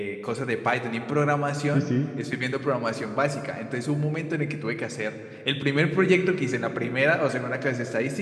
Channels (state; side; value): identical; both; correlation 1.00